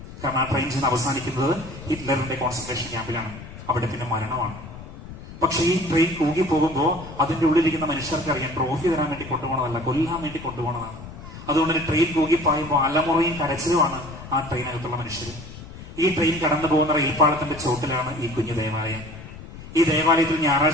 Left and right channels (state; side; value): noise; left; rumble, 14 dB below the sound